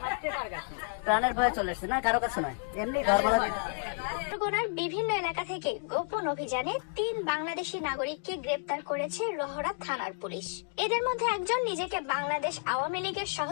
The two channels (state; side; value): silent; right; 57 dB below the other